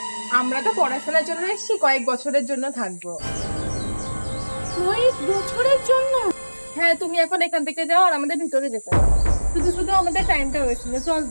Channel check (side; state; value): both; inverted; correlation -1.00